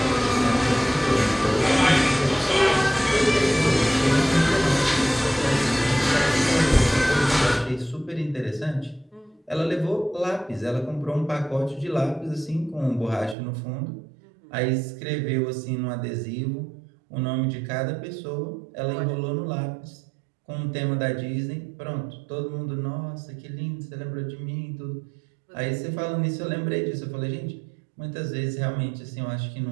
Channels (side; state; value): left; drops out; at 13.4 s